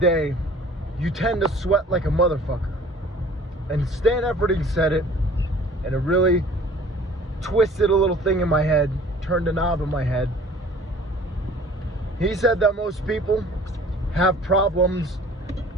you tend to sweat like a motherfucker. And Stan Efferding said it, and it really twisted a little thing in my head, turned a knob in my head. He said that most people have problems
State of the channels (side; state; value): both; normal; correlation 0.50